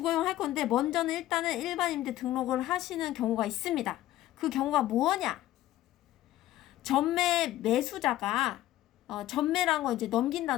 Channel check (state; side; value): quieter; right; 14.5 dB